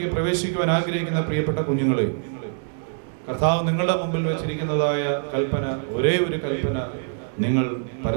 പ്രവേശിക്കുവാൻ ആഗ്രഹിക്കുന്ന പ്രിയപ്പെട്ട കുഞ്ഞുങ്ങളെ, കർത്താവ് നിങ്ങളുടെ മുമ്പിൽ വെച്ചിരിക്കുന്നതായ കൽപ്പന, ഒരേ ഒരു കൽപ്പന, നിങ്ങൾ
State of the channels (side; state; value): left; silent; digital silence